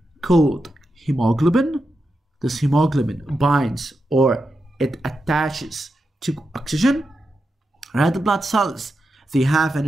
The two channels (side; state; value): both; normal; correlation 0.88